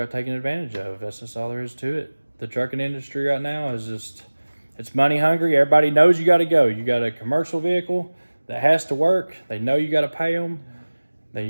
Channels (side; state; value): both; inverted; correlation -1.00